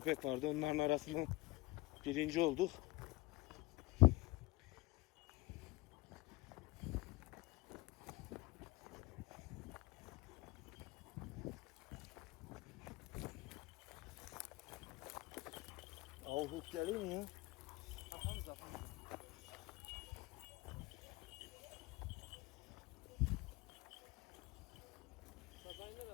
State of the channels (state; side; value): quieter; right; 21.1 dB